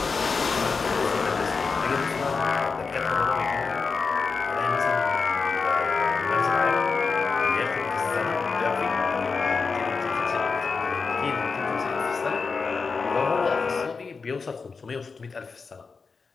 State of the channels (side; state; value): right; quieter; 4.8 dB